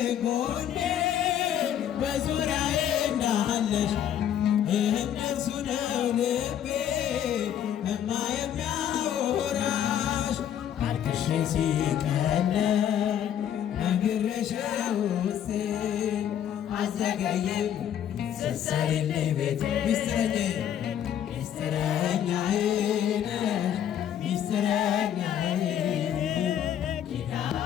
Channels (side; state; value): right; quieter; 10.0 dB